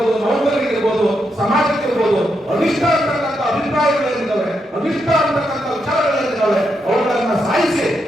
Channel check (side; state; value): both; normal; correlation 0.82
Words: ನೌಕರರಿಗಿರ್ಬೋದು, ಸಮಾಜಕ್ಕಿರ್ಬೋದು ಅನಿಷ್ಟ ಅಂತಕ್ಕಂಥ ಅಭಿಪ್ರಾಯಗಳೇನಿದ್ದಾವೆ, ಅನಿಷ್ಟ ಅಂತಕ್ಕಂಥ ವಿಚಾರಗಳೇನಿದ್ದಾವೆ ಅವುಗಳನ್ನ ಸಾಯಿಸಿ